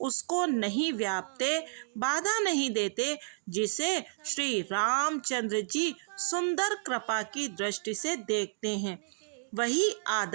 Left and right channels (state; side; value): silent; left; digital silence